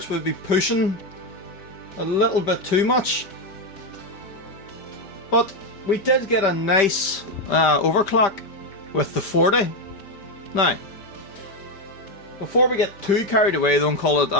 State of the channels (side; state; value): right; late; 5.1 ms